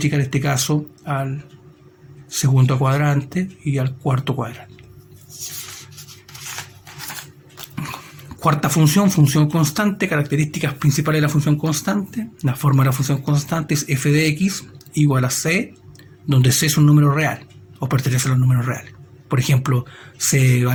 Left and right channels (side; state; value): both; identical; correlation 1.00